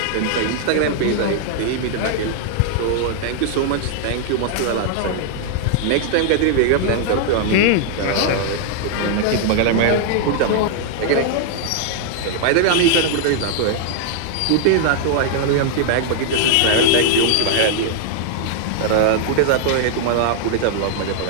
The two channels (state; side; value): different; both; correlation -0.01